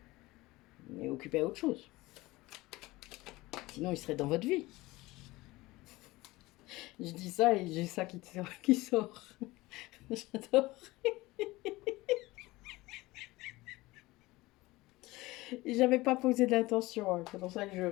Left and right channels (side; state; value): right; quieter; 20.1 dB